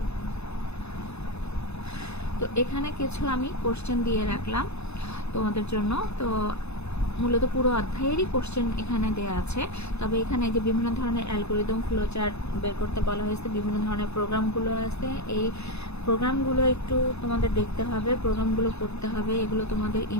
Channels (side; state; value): right; late; 0.80 ms